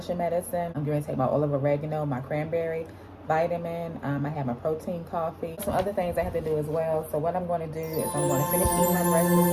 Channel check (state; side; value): identical; both; correlation 1.00